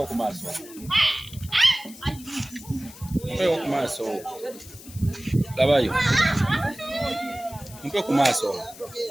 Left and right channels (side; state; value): left; noise; hiss, 18 dB below the sound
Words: ku maaso. Mpeo ku maaso. Labayo. Mpeo ku maaso.